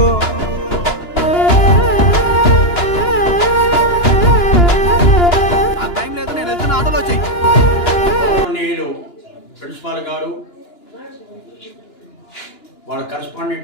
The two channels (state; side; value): late; right; 2.9 ms